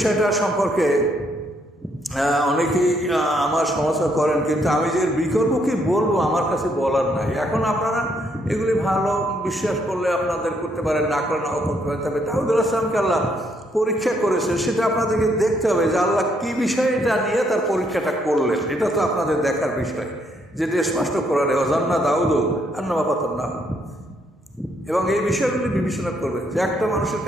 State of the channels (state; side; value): normal; both; correlation 0.72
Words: সম্পর্কে অনেকেই আমার সমালোচনা করেন, কিন্তু আমি যে বিকল্প কি বলবো আমার কাছে বলার নাই। এখন আপনারা এগুলি ভালো বিশ্বাস করলে আপনাদের করতে পারেন, না করে নাও করতে পারেন। তবে দাউদ আলাইহিসকে আল্লাহ পরীক্ষা করেছে, সেটা আপনাদেরকে দেখতে হবে যে আল্লাহ কি বিষয়টা নিয়ে তার পরীক্ষাটা করলেন। এটা তো আপনাদের দেখার বিষয়, যেটা স্পষ্ট করার অজান্না দাউদ আন্নামা পাতান্না। এবং এই বিষয়গুলি বিবেচনা করবেন যে একটা মানুষের